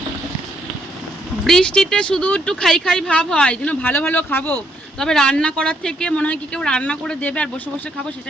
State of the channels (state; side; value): normal; both; correlation 0.72